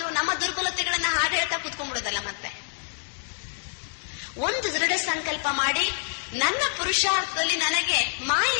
ನಮ್ಮ ದುರ್ಬಲತೆಗಳನ್ನ ಹಾಗೆ ಹೇಳ್ತಾ ಕೂತ್ಕೊಂಡ್ಬಿಡೋದಲ್ಲ. ಮತ್ತೆ ಒಂದು ದೃಢ ಸಂಕಲ್ಪ ಮಾಡಿ, ನನ್ನ ಪುರುಷಾರ್ಥದಲ್ಲಿ ನನಗೆ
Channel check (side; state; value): right; silent; digital silence